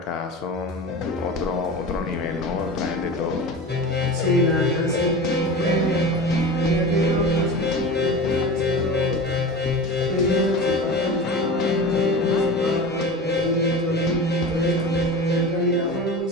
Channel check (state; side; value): normal; both; correlation 0.31